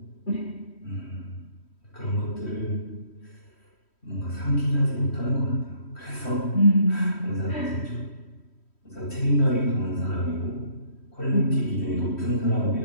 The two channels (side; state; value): right; late; 3.1 ms